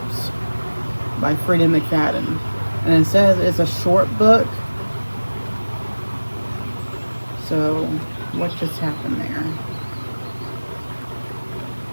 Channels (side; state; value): both; inverted; correlation -1.00